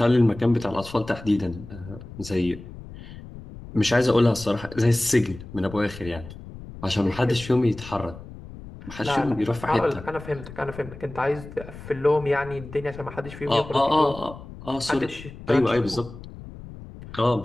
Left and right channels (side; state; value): left; noise; rumble, 15 dB below the sound